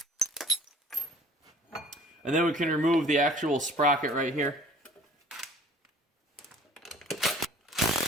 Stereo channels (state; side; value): normal; both; correlation 0.51